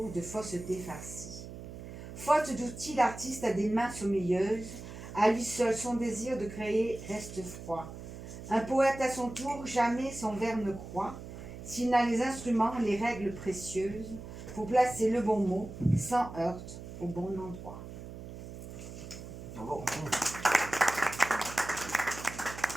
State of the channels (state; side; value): noise; right; hum, 11 dB below the sound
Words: de fausseté farcie. Faute d'outils, l'artiste a des mains sommeilleuses. À lui seul, son désir de créer reste froid. Un poète à son tour, jamais son vers ne croit, s'il n'a les instruments, les règles précieuses, pour placer le bon mot, sans heurte, au bon endroit. Bravo.